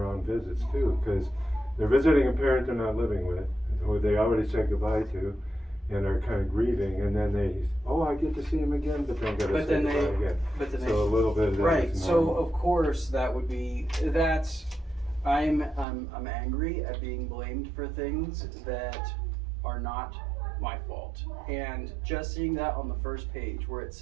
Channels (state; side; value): drops out; left; at 15.9 s